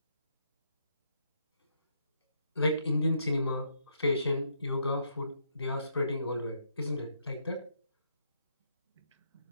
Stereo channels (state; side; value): inverted; both; correlation -0.75